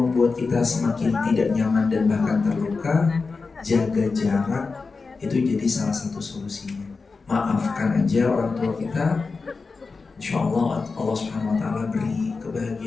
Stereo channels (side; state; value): right; quieter; 4.3 dB